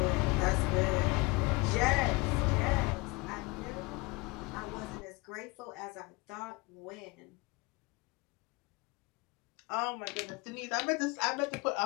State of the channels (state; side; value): quieter; right; 25.1 dB